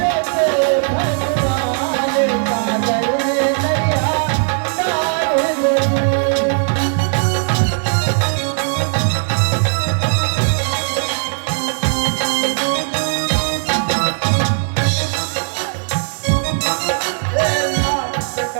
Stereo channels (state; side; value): silent; left; digital silence